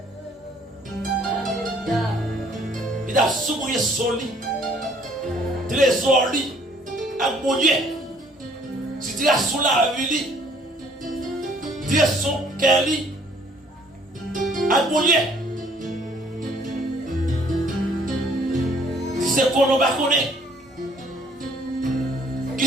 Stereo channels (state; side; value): normal; both; correlation 0.60